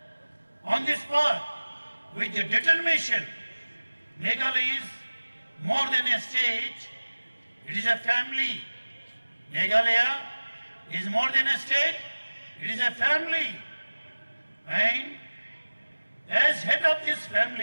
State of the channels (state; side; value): inverted; both; correlation -1.00